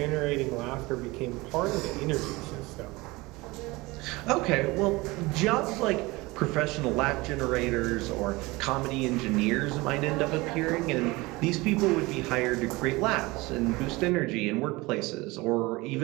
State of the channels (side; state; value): left; quieter; 22.4 dB